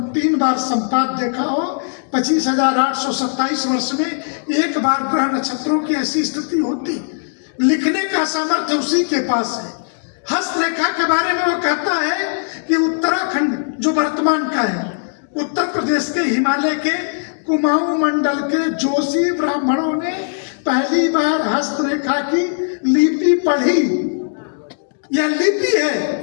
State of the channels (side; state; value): right; silent; digital silence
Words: 3 बार संपात देखा हो, 25,827 वर्ष में एक बार ग्रह नक्षत्रों की ऐसी स्थिति होती, लिखने का सामर्थ्य उसी के पास है। हस्तरेखा के बारे में वो कहता है कि उत्तराखंड जो वर्तमान का है, उत्तर प्रदेश के हिमालय के कुमाऊं मंडल के जोशी ब्राह्मणों ने पहली बार हस्तरेखा की लिपि पढ़ी। यह लिपि